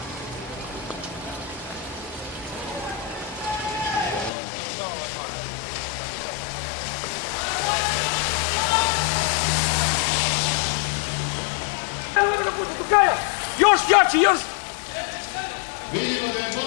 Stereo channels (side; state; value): right; drops out; at 4.3 s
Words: Još jači, još! Vidimo da je